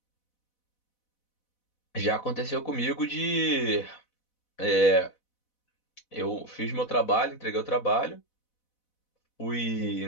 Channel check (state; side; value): late; right; 4.0 ms